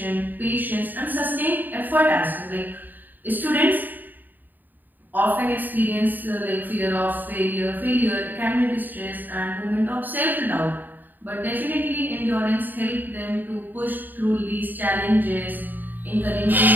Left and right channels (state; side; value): late; left; 0.088 ms